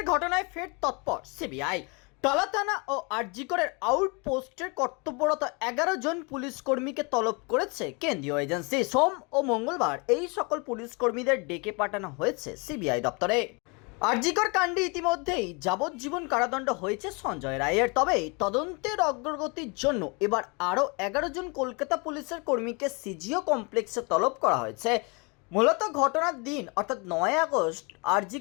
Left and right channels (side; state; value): right; quieter; 31.0 dB